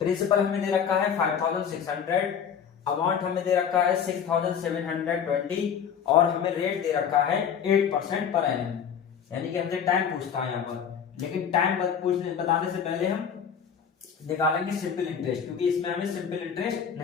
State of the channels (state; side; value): quieter; right; 7.7 dB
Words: प्रिंसिपल हमें दे रखा है 5600, अमाउंट हमें दे रखा है 6720 और हमें रेट दे रखा है 8% पर एनम। यानी कि हमसे टाइम पूछता है यहाँ पर। लेकिन टाइम बताने से पहले हम निकालेंगे सिंपल इंटरेस्ट, क्योंकि इसमें हमें सिंपल इंटरेस्ट